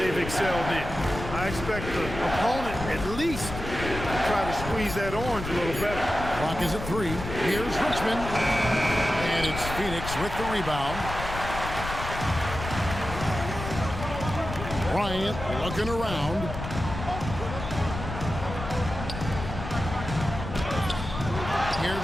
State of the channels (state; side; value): noise; left; rumble, 8 dB below the sound